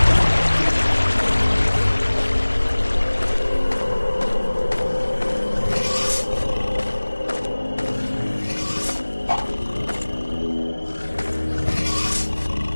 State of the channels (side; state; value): both; inverted; correlation -1.00